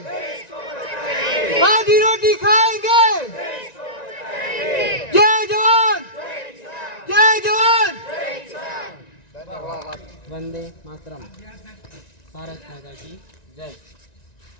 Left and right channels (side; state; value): right; late; 1.9 ms